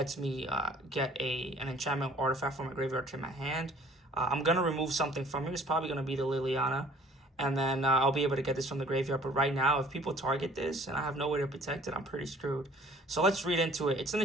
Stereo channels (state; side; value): normal; both; correlation 0.54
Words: me get an enchantment artifact from my graveyard to my hand. I'm going to remove something from here. It's probably going to be the Liliana. And then I'll be able to get this from the graveyard. But right now, if people target this and I have no way to protect it, I'm pretty screwed. So let's read into it. It's an